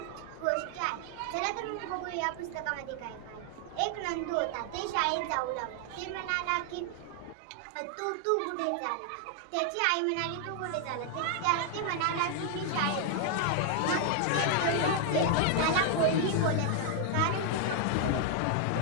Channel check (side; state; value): both; different; correlation 0.00